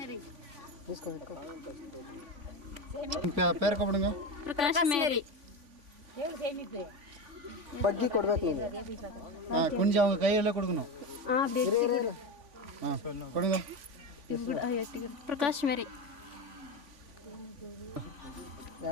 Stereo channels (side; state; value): left; late; 3.5 ms